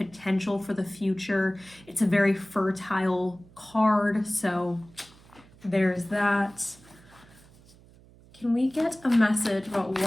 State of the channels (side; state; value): right; noise; hum, 25 dB below the sound